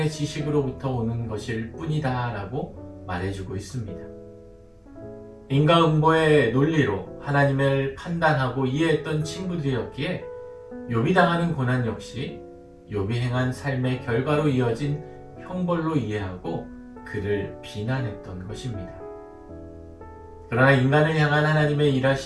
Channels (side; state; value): both; identical; correlation 1.00